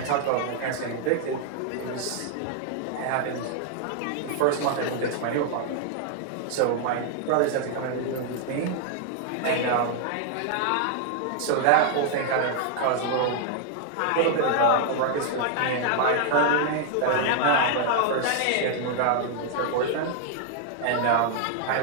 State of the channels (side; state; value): both; different; correlation 0.00